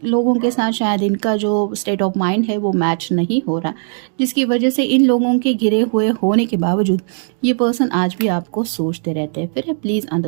लोगों के साथ शायद इनका जो स्टेट ऑफ माइंड है वो मैच नहीं हो रहा, जिसकी वजह से इन लोगों के घिरे हुए होने के बावजूद ये पर्सन आज भी आपको सोचते रहते हैं। फिर प्लीज़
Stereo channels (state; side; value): silent; left; digital silence